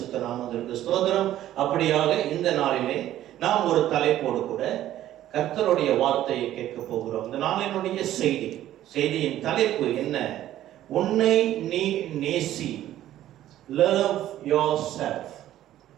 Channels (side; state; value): left; quieter; 13.0 dB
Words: நாமத்திற்கு ஸ்தோத்திரம். அப்படியாக இந்த நாளிலே நாம் ஒரு தலைப்போடு கூட கர்த்தருடைய வார்த்தையை கேட்க போகிறோம். இந்த நாளினுடைய செய்தியின் தலைப்பு என்ன? உன்னை நீ நேசி. Love yourself.